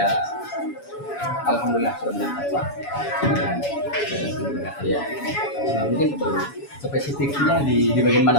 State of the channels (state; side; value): late; right; 7.1 ms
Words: alhamdulillah sudah meningkat Pak. Ya. Mungkin spesifiknya di bagian mana